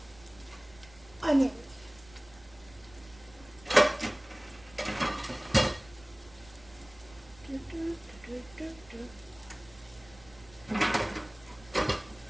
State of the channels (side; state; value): right; noise; rumble, 23 dB below the sound